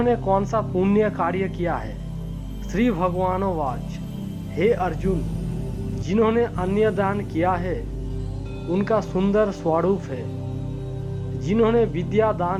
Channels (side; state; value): both; identical; correlation 1.00